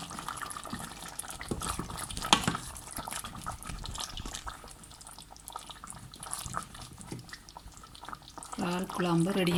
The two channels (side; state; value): both; identical; correlation 1.00